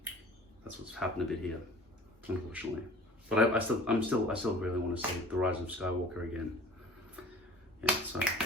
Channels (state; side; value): normal; both; correlation 0.45